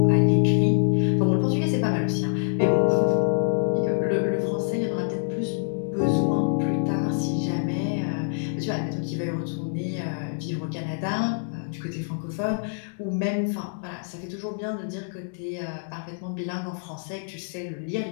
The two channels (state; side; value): silent; right; digital silence